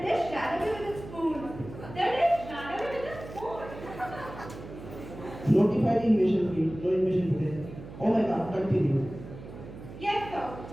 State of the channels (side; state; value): right; noise; hum, 14 dB below the sound